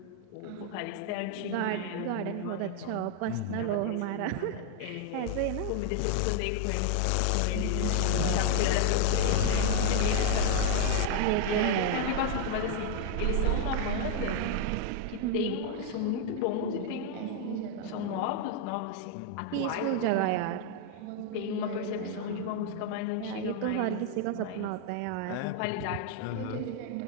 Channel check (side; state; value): both; different; correlation 0.00